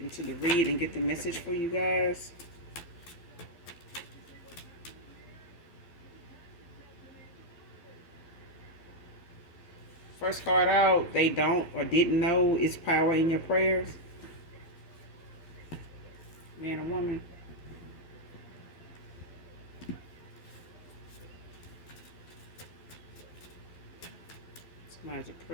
the read and get the message for you guys. First card out, they don't or didn't know it's power in your prayers. Man or woman. Somebody's a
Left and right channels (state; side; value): late; right; 12 ms